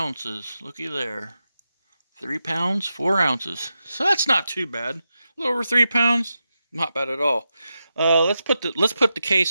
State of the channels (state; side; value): inverted; both; correlation -0.89